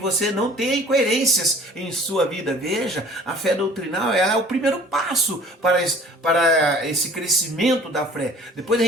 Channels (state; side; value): normal; both; correlation 0.50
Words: não tenha incoerências em sua vida. Veja, a fé doutrinal, ela é o primeiro passo para esse crescimento da fé. Depois a